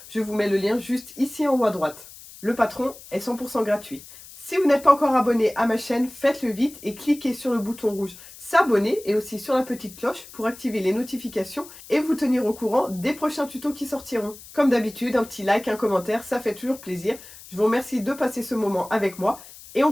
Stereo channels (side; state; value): left; noise; hiss, 18 dB below the sound